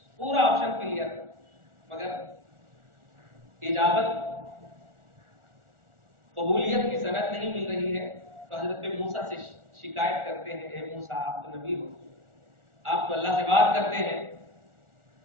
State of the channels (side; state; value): left; late; 1.4 ms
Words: مگر اجابت قبولیت کی سند نہیں مل رہی ہے. تو حضرت موسیٰ سے شکایت کرتے ہیں، اے موسیٰ آپ تو نبی ہو، آپ تو اللہ سے بات کرتے ہیں،